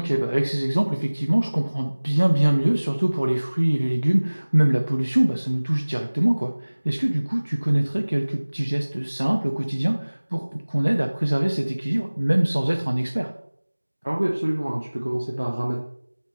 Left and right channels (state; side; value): inverted; both; correlation -1.00